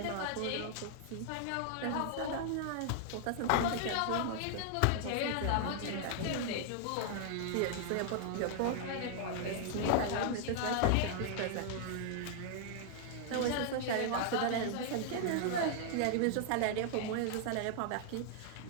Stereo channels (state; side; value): different; both; correlation 0.00